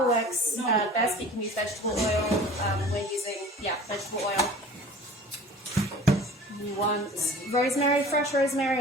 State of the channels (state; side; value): normal; both; correlation 0.43